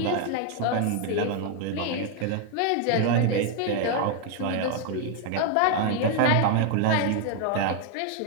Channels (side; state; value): both; different; correlation 0.00